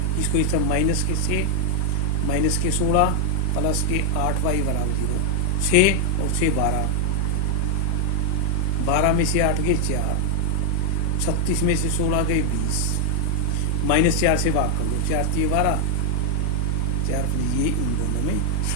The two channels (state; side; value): different; both; correlation 0.00